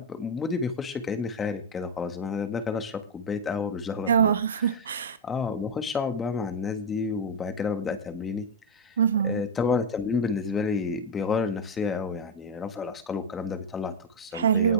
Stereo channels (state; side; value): normal; both; correlation 0.03